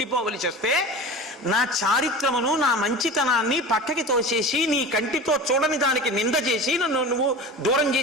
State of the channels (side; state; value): both; normal; correlation 0.33